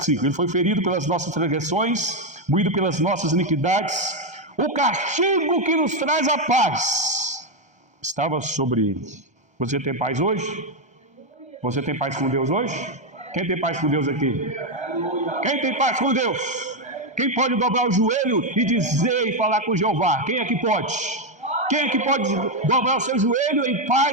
5, ele foi ferido pelas nossas transgressões, moído pelas nossas iniquidades, o castigo que nos traz a paz estava sobre ele. Você tem paz hoje? Você tem paz com Deus hoje? Quem tem paz com Deus aqui? Quem tem paz com Deus? Quem pode dobrar o joelho e dizer e falar com Jeová? Quem é que pode? Quem é que pode dobrar o seu joelho em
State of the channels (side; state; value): left; late; 1.3 ms